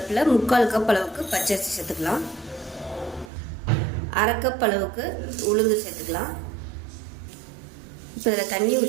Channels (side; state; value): left; drops out; at 3.3 s